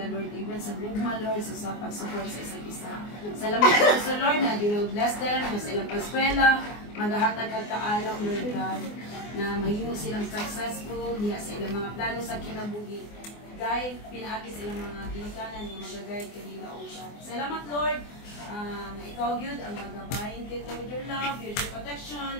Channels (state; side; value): late; right; 24 ms